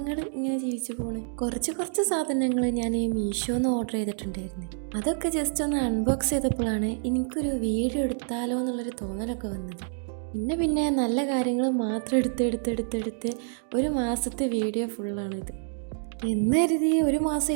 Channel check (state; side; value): silent; left; 60 dB below the other